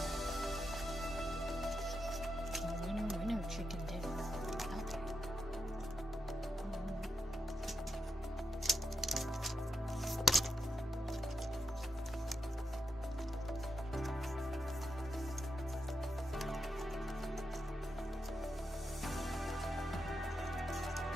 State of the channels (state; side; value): normal; both; correlation 0.86